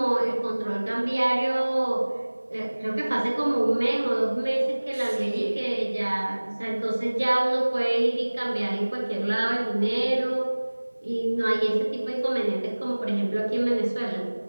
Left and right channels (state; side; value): inverted; both; correlation -1.00